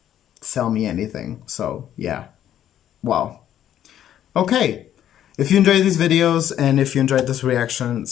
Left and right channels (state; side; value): quieter; right; 11.0 dB